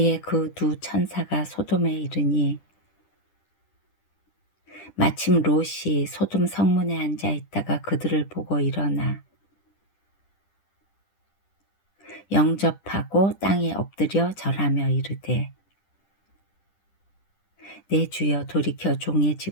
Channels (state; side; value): late; right; 10 ms